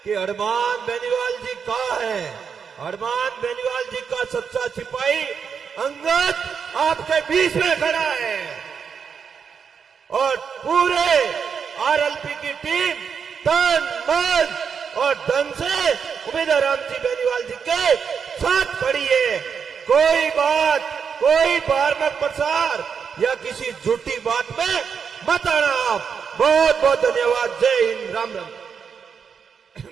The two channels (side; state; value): left; quieter; 6.5 dB